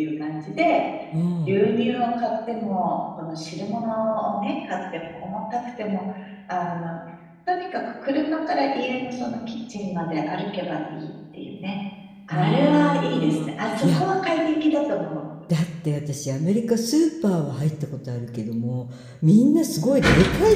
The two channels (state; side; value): identical; both; correlation 1.00